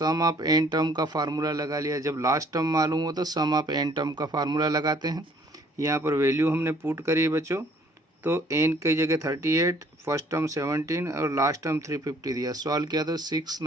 ऑफ एन टर्म का फार्मूला लगा लिया। जब लास्ट टर्म मालूम हो तो सम ऑफ एन टर्म का फार्मूला लगाते हैं। यहाँ पर वैल्यू हमने पुट करी है बच्चों। तो एन की जगह 38, फर्स्ट टर्म 17 और लास्ट टर्म 350 दिया। सॉल्व किया तो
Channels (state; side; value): normal; both; correlation 0.60